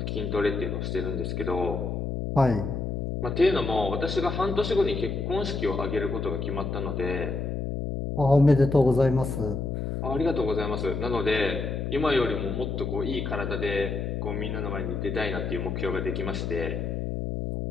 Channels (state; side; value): noise; left; hum, 3 dB below the sound